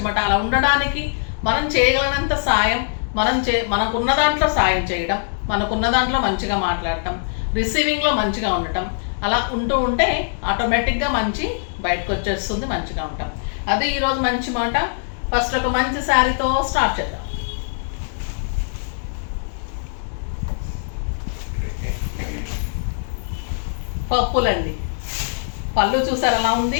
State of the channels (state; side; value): silent; right; digital silence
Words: మాట. అలా ఉండడానికి మనం చేయగలిగినంత సాయం, మనకున్న దాంట్లో సాయం చేయడం, మనకున్న దాంట్లో మంచిగా మాట్లాడటం, రిసీవింగ్లో మంచిగా ఉండటం, అలా ఉంటూ ఉంటే ఆటోమేటిక్గా మంచి బయటకు వచ్చేస్తుంది, మంచిగా ఉంటాం. అది ఈరోజు మంచి మాట. ఫస్ట్ ఒక మంచి శారీతో స్టార్ట్ చేద్దాం. పప్పులండి. పళ్ళు చూసారు ఎలా